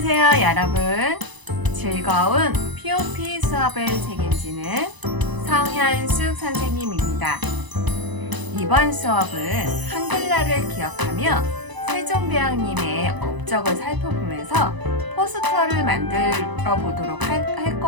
여러분. 즐거운 POP 수업을 책임지는 성현숙 선생님입니다. 이번 수업은 한글날을 기억하며 세종대왕님의 업적을 살펴보면서 포스터를 만들어 보도록 할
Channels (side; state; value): left; late; 1.0 ms